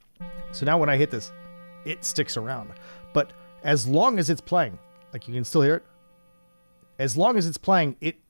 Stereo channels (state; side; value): inverted; both; correlation -1.00